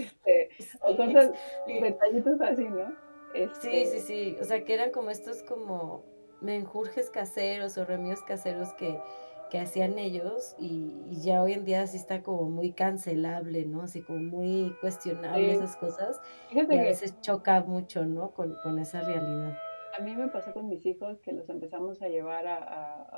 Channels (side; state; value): both; inverted; correlation -1.00